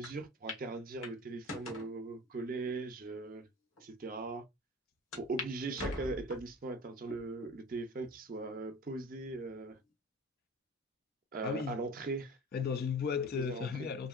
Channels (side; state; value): both; normal; correlation 0.38